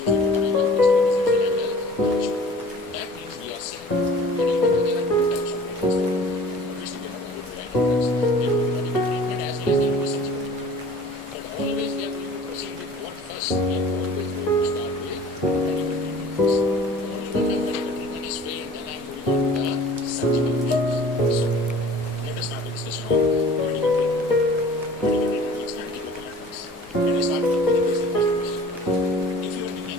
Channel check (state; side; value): normal; both; correlation 0.46